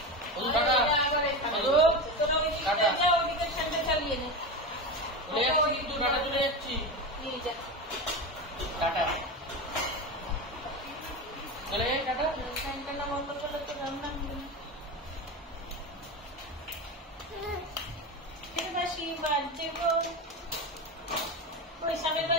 ওই টাটা তোরা ওইদিকে যা ওইদিকে ঠান্ডা চালিয়ে নে ওই তুই টাটা চলে যাচ্ছি নিয়ে যা টাটা চলে টাটা ঠান্ডা বন্ধ করলে তো রান্না হবে না फिर बाशी बाजे को कोई समय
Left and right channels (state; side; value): normal; both; correlation 0.21